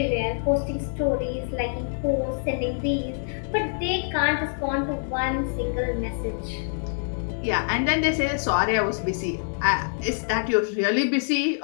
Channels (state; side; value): silent; right; digital silence